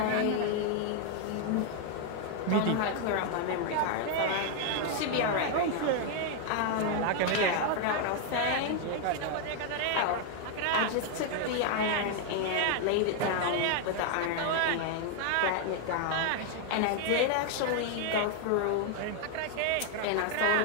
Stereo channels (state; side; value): different; both; correlation 0.00